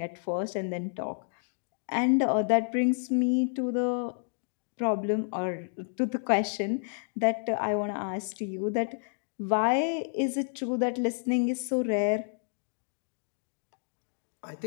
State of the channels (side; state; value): right; silent; digital silence